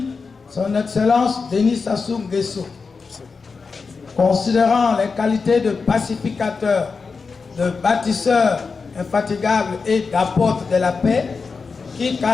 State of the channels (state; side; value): quieter; right; 4.8 dB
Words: son Excellence Denis Sassou Nguesso, considérant les qualités de pacificateur, de bâtisseur infatigable et d'apôtre de la paix qui